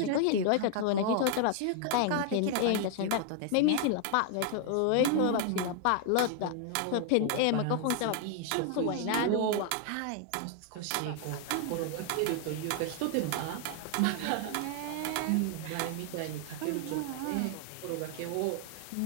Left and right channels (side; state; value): both; different; correlation 0.00